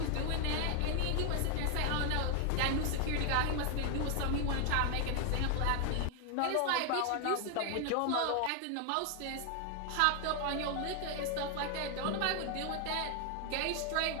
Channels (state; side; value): different; both; correlation 0.00